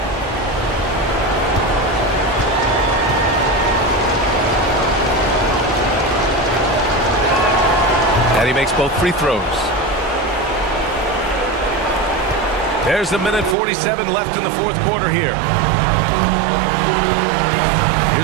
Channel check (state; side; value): drops out; left; at 13.6 s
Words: And he makes both free throws. There's a minute 47 left in the 4th quarter here.